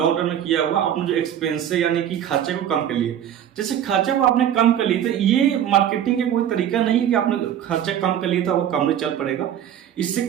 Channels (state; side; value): quieter; left; 10.2 dB